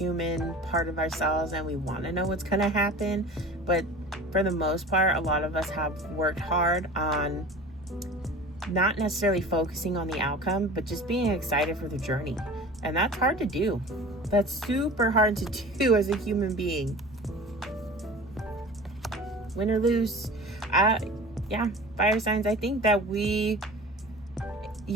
part of ourselves and we want to know what's going to happen. But for the most part, a lot of us have worked hard on not necessarily focusing on the outcome, but just being excited for the journey. And that's hard to do. That's super hard to do as a human being. Win or lose. Fire signs, I think that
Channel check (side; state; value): both; normal; correlation 0.39